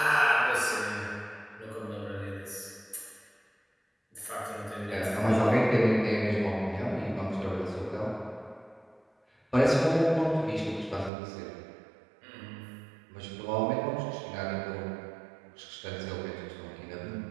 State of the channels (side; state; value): left; drops out; at 11.1 s